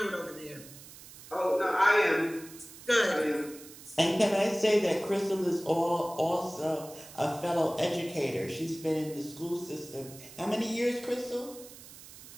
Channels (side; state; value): right; noise; hiss, 17 dB below the sound